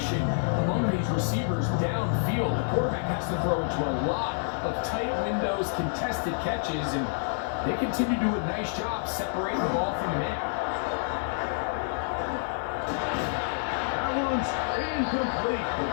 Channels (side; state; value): right; silent; digital silence